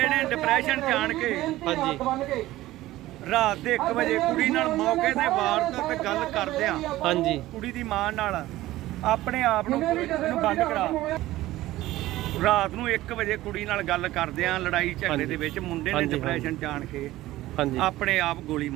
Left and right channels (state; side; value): quieter; left; 16.3 dB